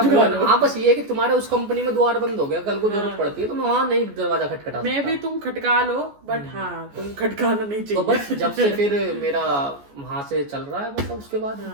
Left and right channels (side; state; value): left; late; 14 ms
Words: हाँ बस ये है कि तुम्हारे उस कंपनी में द्वार बंद हो गया, कल को जरूरत पड़ती है तो मैं वहाँ नहीं दरवाजा खटखटा, मैं भी तुम खटका लो, बट हाँ तुम खटकाना नहीं चाहिए। तो बस जब से फिर मेरा वहाँ से चल रहा है, मतलब उसके बाद